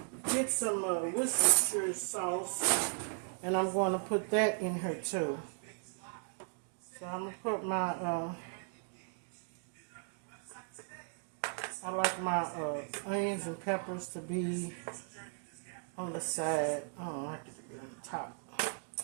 get some Worcestershire sauce, and I'm going to put that in here too. So I'm going to put my, I like my onions and peppers to be on the side. I don't like it to be on the top.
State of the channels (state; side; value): silent; left; 53 dB below the other